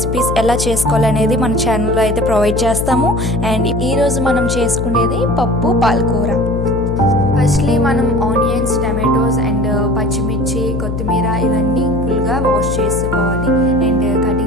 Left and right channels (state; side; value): noise; left; hum, 3 dB below the sound